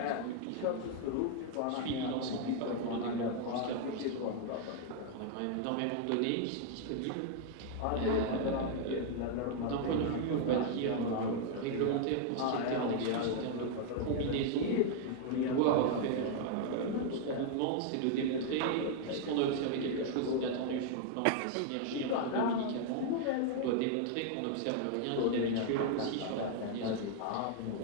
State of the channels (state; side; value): different; both; correlation 0.00